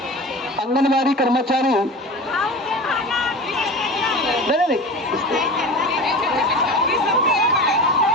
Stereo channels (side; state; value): both; normal; correlation 0.32